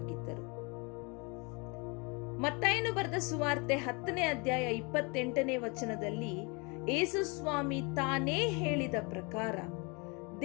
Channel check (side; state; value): right; quieter; 30.3 dB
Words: ಮತ್ತಾಯನು ಬರೆದ ಸುವಾರ್ತೆ 10ನೇ ಅಧ್ಯಾಯ 28ನೇ ವಚನದಲ್ಲಿ ಯೇಸು ಸ್ವಾಮಿ ತಾನೇ ಹೇಳಿದ ಪ್ರಕಾರ,